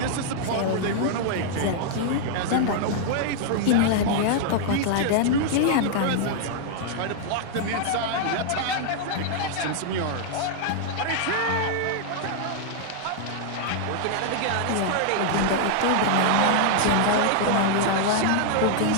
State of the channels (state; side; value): different; both; correlation -0.01